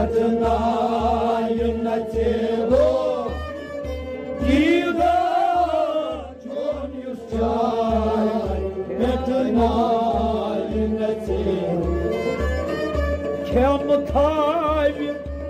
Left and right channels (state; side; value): identical; both; correlation 1.00